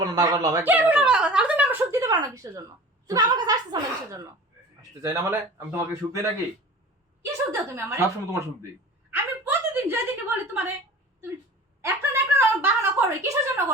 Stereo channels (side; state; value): both; normal; correlation 0.40